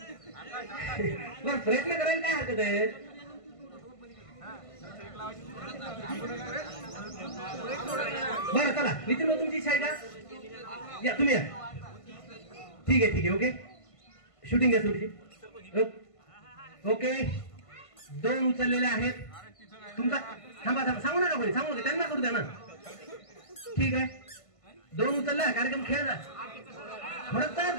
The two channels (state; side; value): late; right; 1.5 ms